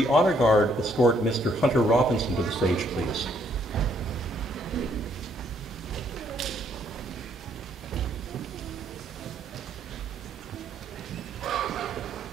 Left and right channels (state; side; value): normal; both; correlation 0.69